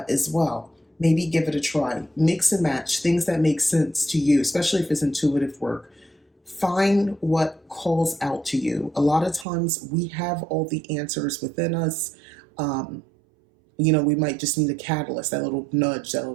well. Maybe give it a try. Mix and match things that make sense to you, especially if it's intuitive work. Find what calls out to you. A lot of times we have all the answers within us. Um, we might just need a catalyst, that little nudge, that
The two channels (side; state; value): left; drops out; at 9.5 s